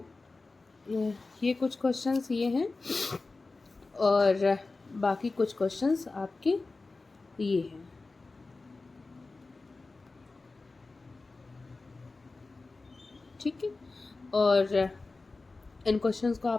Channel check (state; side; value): quieter; right; 3.6 dB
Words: ये कुछ क्वेश्चंस ये हैं और बाकी कुछ क्वेश्चंस आपके ये हैं। ठीक है, और इन क्वेश्चंस को